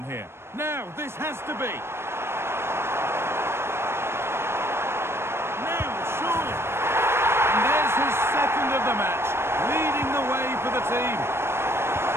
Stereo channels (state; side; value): late; left; 0.12 ms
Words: here. Now, this has to be. Now, surely. And there's his second of the match, leading the way for the team.